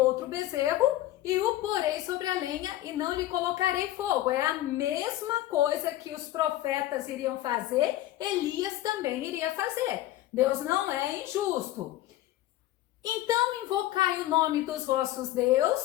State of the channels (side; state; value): right; quieter; 14.8 dB